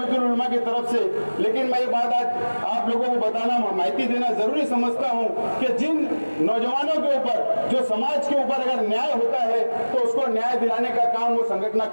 उलमा की तरफ से, लेकिन मैं ये बात आज आप लोगों को बताना, माहिती देना जरूरी समझता हूं कि जिन नौजवानों के ऊपर, जो समाज के ऊपर अगर न्याय होता है तो उसको न्याय दिलाने का काम वो संगठन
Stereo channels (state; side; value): inverted; both; correlation -1.00